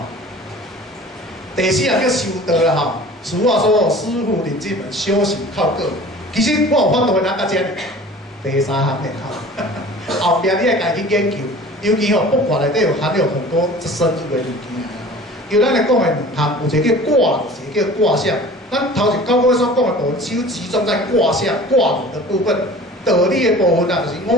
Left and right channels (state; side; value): normal; both; correlation 0.43